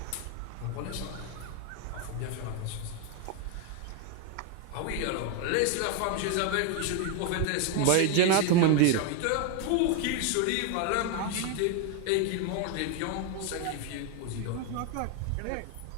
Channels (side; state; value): both; different; correlation 0.01